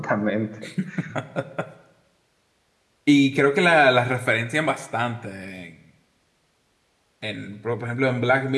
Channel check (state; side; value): identical; both; correlation 1.00